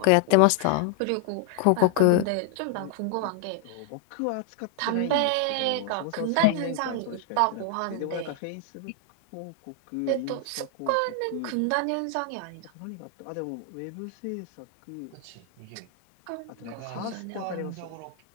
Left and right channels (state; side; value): different; both; correlation 0.00